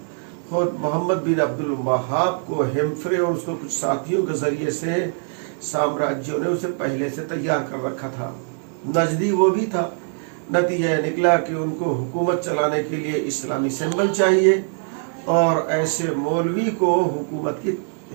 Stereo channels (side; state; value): left; silent; 63 dB below the other